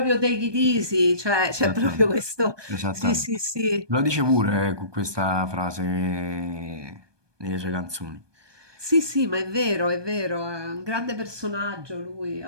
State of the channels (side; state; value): left; late; 1.2 ms